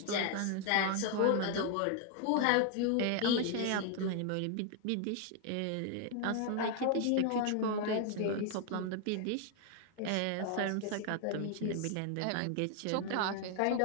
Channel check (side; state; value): both; different; correlation 0.00